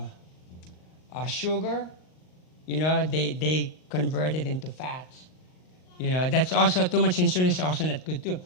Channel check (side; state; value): right; late; 39 ms